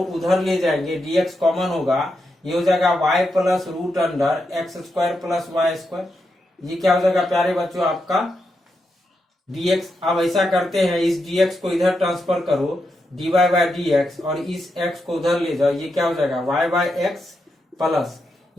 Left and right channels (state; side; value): normal; both; correlation 0.85